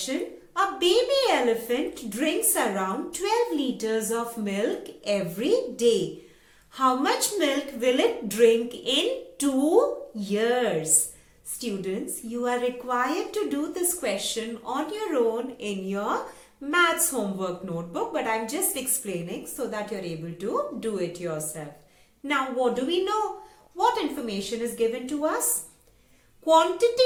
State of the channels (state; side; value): identical; both; correlation 1.00